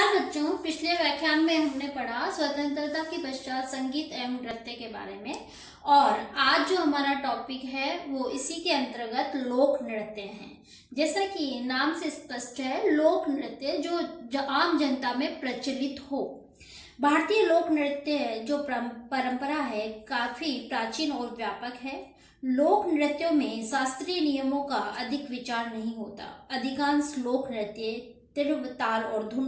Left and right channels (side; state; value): both; identical; correlation 1.00